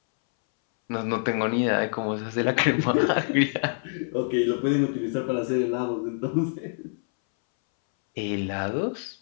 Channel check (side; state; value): right; silent; 61 dB below the other